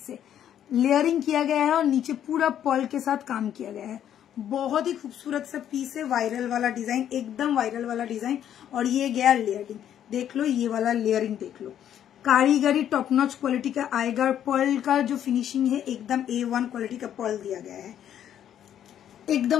है। लेयरिंग किया गया है और नीचे पूरा पर्ल के साथ काम किया गया है। बहुत ही खूबसूरत सा पीस है, वायरल वाला डिजाइन, एकदम वायरल वाला डिजाइन। और ये गया लेयरिंग, देख लो ये वाला लेयरिंग देख लो, कारीगरी टॉप नॉच क्वालिटी का आएगा। पर्ल का जो फिनिशिंग है एकदम A1 क्वालिटी का पर्ल दिया गया है,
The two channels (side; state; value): right; quieter; 10.2 dB